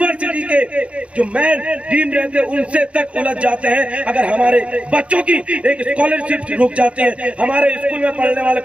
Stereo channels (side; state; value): left; late; 0.062 ms